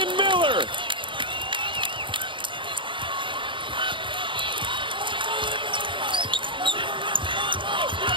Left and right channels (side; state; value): left; late; 0.24 ms